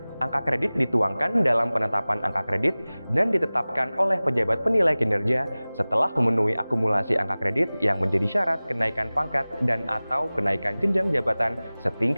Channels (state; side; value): inverted; both; correlation -0.99